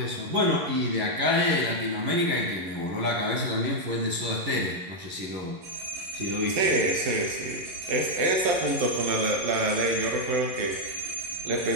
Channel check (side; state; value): left; late; 11 ms